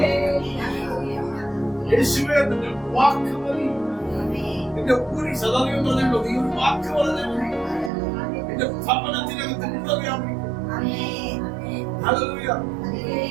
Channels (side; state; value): left; drops out; at 7.9 s